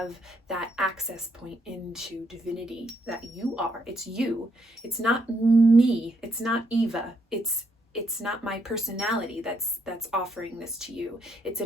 that access point into divinity that you are. It's you. It's not me. It's not Eva. It's not my personality that's offering this to you. It's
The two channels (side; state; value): both; normal; correlation 0.74